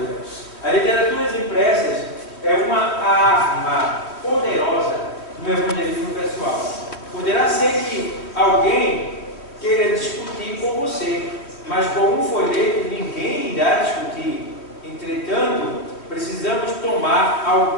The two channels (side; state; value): right; late; 3.2 ms